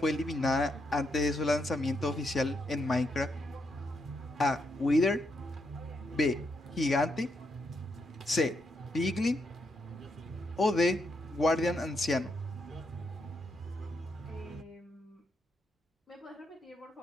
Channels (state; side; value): normal; both; correlation 0.80